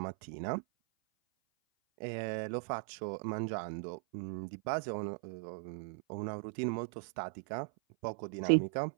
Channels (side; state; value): left; silent; 52 dB below the other